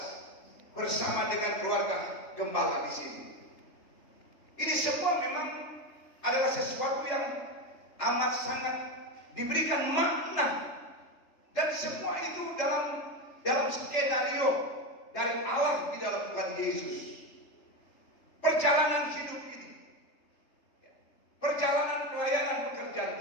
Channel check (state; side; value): late; right; 3.3 ms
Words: bersama dengan keluarga gembala di sini. Ini semua memang adalah sesuatu yang amat sangat diberikan makna, dan semua itu dalam skenario dari Allah di dalam Tuhan Yesus. Perjalanan hidup ini, perjalanan pelayanan